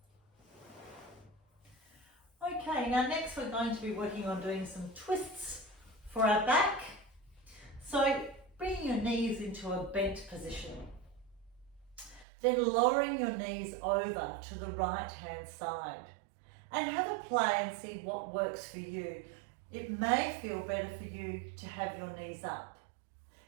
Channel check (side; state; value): left; drops out; at 12.2 s